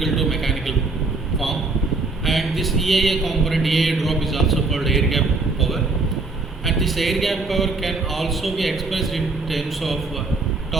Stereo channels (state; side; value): quieter; left; 3.6 dB